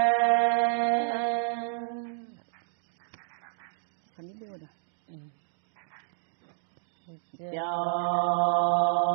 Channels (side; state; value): left; silent; digital silence